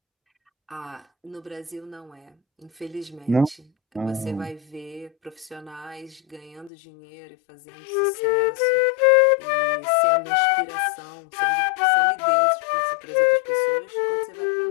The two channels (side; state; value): right; drops out; at 6.7 s